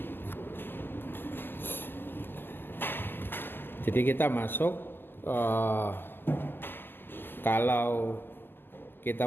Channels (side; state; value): right; late; 0.096 ms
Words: Jadi kita masuk kalau